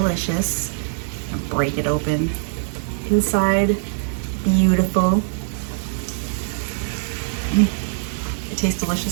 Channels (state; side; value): silent; left; digital silence